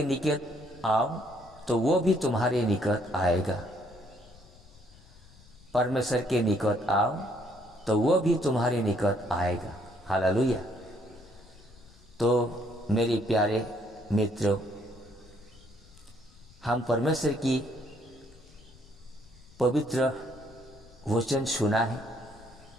निकट आओ तो वो भी तुम्हारे निकट आएगा। परमेश्वर के निकट आओ तो वो भी तुम्हारे निकट आएगा। हालेलुया। तो मेरे प्यारे मित्रों, हम परमेश्वर की पवित्र वचन सुना है,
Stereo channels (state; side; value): noise; left; rumble, 24 dB below the sound